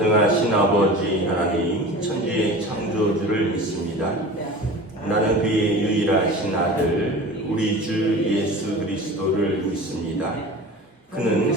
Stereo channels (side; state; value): both; normal; correlation 0.36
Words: 아버지 하나님 천지의 창조주를 믿습니다. 나는 그의 유일하신 아들 우리 주 예수 그리스도를 믿습니다. 그는